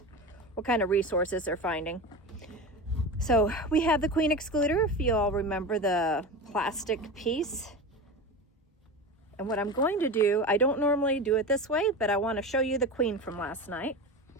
what kind of resources they're finding. So we have the queen excluder, if you all remember the plastic piece. And what I'm going to do, I don't normally do it this way, but I want to show you the queen from last night.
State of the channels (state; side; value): normal; both; correlation 0.26